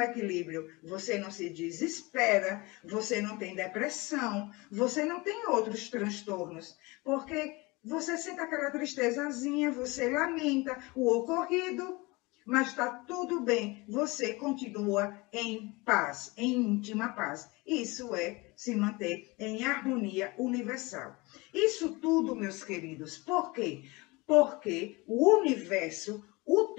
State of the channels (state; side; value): quieter; right; 24.3 dB